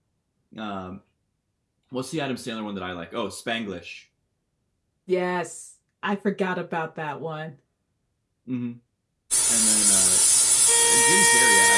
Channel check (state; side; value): identical; both; correlation 1.00